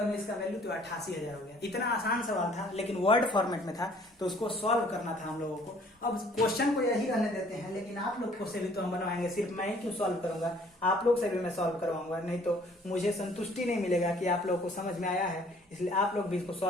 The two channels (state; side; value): normal; both; correlation 0.57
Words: में इसका वैल्यू? तो 88,000 हो गया। इतना आसान सवाल था लेकिन वर्ड फॉर्मेट में था, तो उसको सॉल्व करना था हम लोगों को। अब क्वेश्चन को यही रहने देते हैं, लेकिन आप लोग को से भी तो हम बनवाएंगे, सिर्फ मैं ही क्यों सॉल्व करूंगा, आप लोग से भी मैं सॉल्व करवाऊंगा, नहीं तो मुझे संतुष्टि नहीं मिलेगा कि आप लोगों को समझ में आया है। इसलिए आप लोग भी इसको